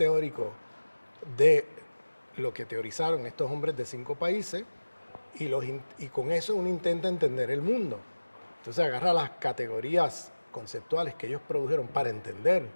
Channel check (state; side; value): inverted; both; correlation -1.00